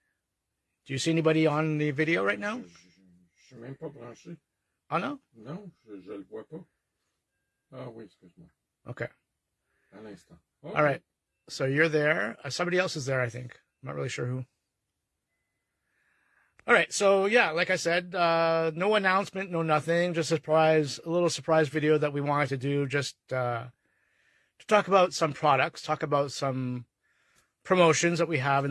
Do you see anybody on the video right now? Je suis même pas branché. Oh, no? Non, je le vois pas. Ah oui, excuse-moi. Okay. À l'instant. Okay. All right. So you're there. Somebody else is there, I think. I'm not really sure who. All right. So, yeah, like I said, no announcement, no nothing. Just a little surprise video that we wanted to do just to talk about some products, talk about some promotions that we have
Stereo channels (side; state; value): both; identical; correlation 1.00